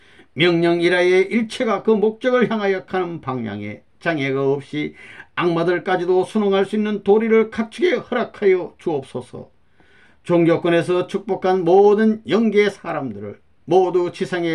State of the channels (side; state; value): both; identical; correlation 1.00